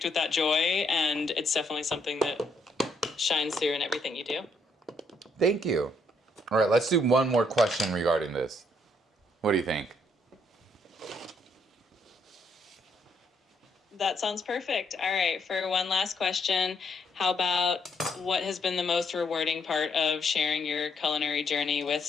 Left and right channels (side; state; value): both; normal; correlation 0.72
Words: with that joy, and it's definitely something that shines through in everything you do. Thank you. All right, let's do one more question regarding this. What do you think? That sounds perfect. All right, for one last question, how about what has been the most rewarding part of sharing your culinary journey with